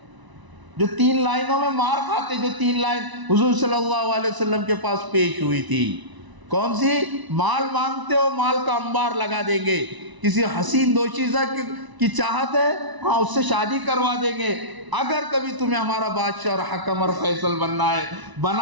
جو 3 لائنوں میں مار کھاتے, جو 3 لائن حضور صلی اللہ علیہ وسلم کے پاس پیش ہوئی تھی. کون سی؟ مال مانگتے ہو, مال کا انبار لگا دیں گے. کسی حسین دوشیزہ کی چاہت ہے, ہاں اس سے شادی کروا دیں گے. اگر کبھی تمہیں ہمارا بادشاہ اور حکم اور فیصل بننا ہے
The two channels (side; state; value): left; late; 1.0 ms